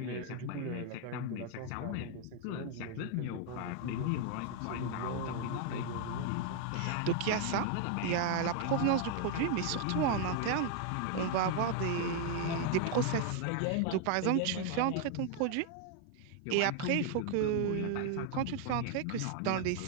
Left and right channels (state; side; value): different; both; correlation 0.00